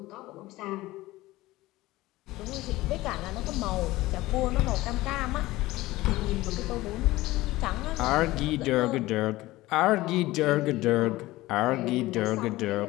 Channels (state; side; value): quieter; right; 18.2 dB